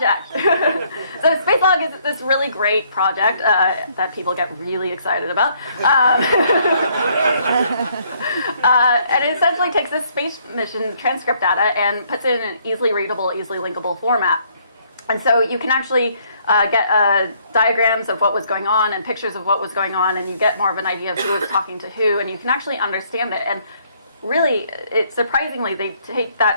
So space log is this really great project that people get really excited about. And it essentially takes this space mission transcript data and puts it in an easily readable, easily linkable format. And so you can actually get diagrams of what was going on and pictures of what was going on, and you get more of an idea of who was talking to who, and you can actually understand it. And really, surprisingly, they take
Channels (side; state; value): both; inverted; correlation -0.66